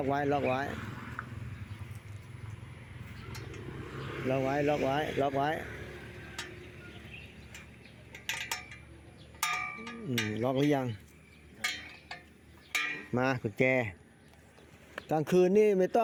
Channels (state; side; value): identical; both; correlation 1.00